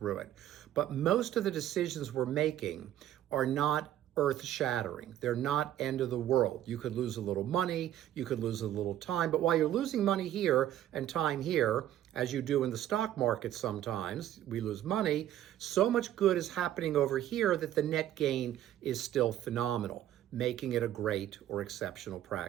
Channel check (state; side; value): quieter; left; 12.3 dB